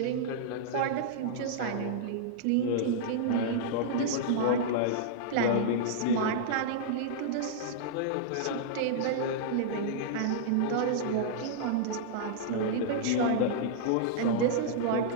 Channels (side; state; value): both; different; correlation -0.02